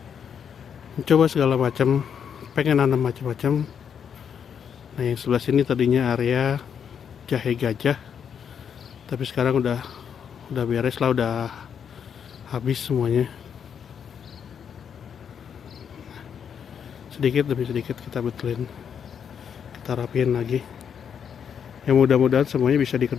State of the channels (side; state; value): right; quieter; 7.7 dB